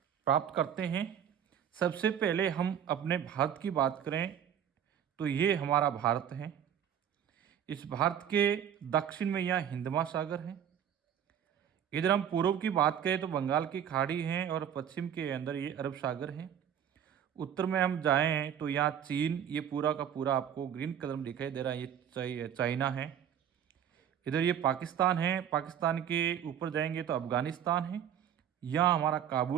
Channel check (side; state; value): left; quieter; 9.2 dB